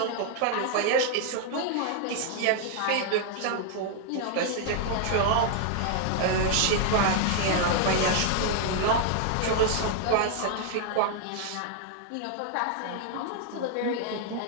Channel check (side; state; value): both; different; correlation 0.00